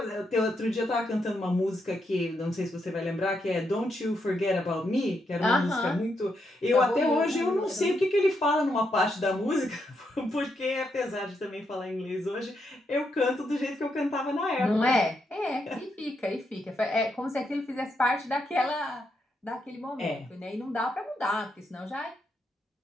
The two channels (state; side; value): normal; both; correlation 0.80